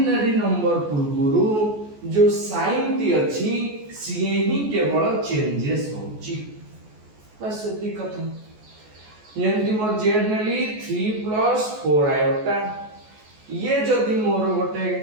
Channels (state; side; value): late; left; 14 ms